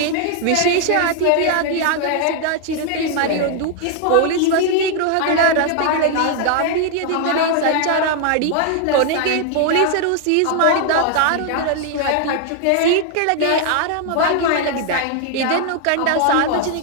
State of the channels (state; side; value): different; both; correlation 0.00